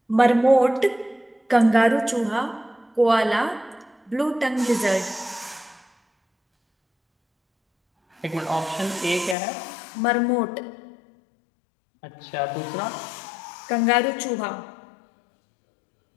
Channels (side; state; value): right; drops out; at 9.3 s